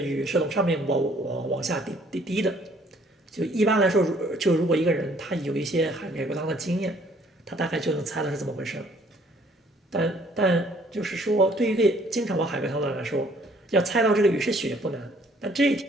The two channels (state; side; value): normal; both; correlation 0.61